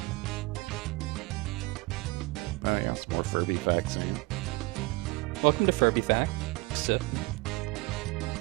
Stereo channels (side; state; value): left; quieter; 23.8 dB